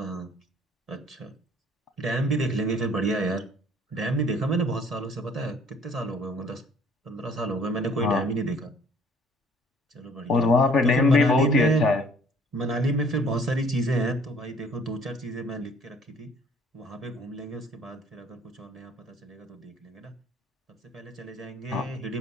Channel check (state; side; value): normal; both; correlation 0.56